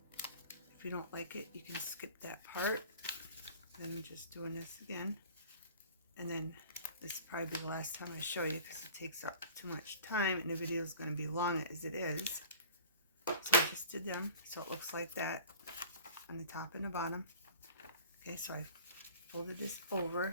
If you don't like it, you can skip that part. Then I'm just doing this again. And then this will probably be the last time I show you because it takes up too much time and the video is going to be long as it is. So I just did them so it looks like that on the top and the bottom. Okay, so I folded this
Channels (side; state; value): both; inverted; correlation -0.45